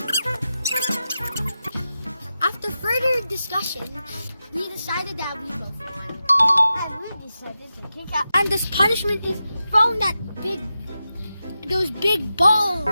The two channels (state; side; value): inverted; both; correlation -0.91